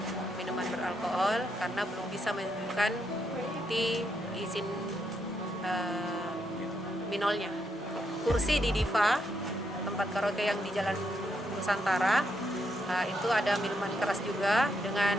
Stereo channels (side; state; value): both; normal; correlation 0.78